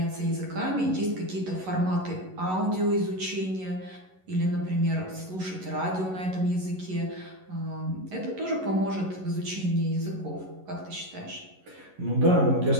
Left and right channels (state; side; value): late; left; 11 ms